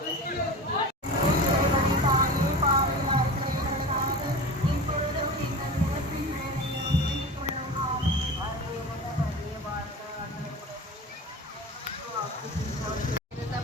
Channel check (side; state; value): both; normal; correlation 0.31